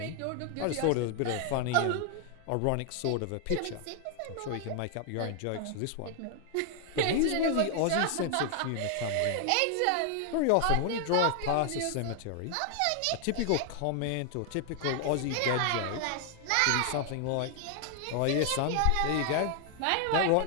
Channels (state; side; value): different; both; correlation 0.00